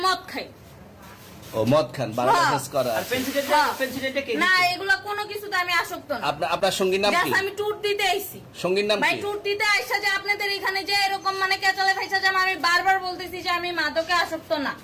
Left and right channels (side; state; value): both; identical; correlation 1.00